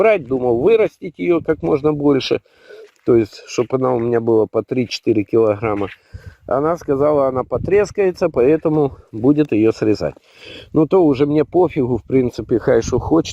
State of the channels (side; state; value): both; identical; correlation 1.00